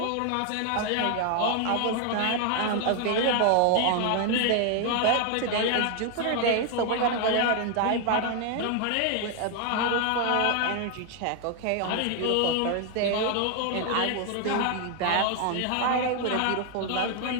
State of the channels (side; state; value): both; different; correlation 0.00